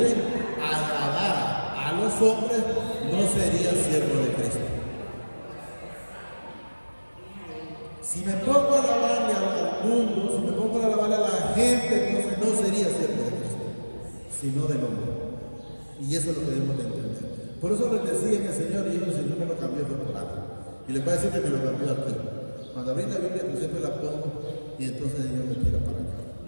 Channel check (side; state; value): both; inverted; correlation -1.00